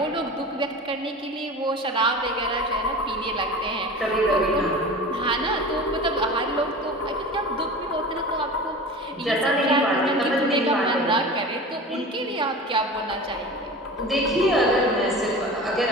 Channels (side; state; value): both; normal; correlation 0.35